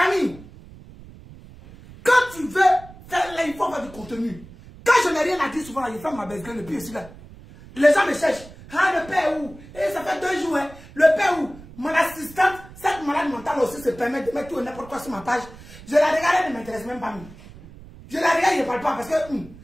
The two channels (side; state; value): right; noise; rumble, 19 dB below the sound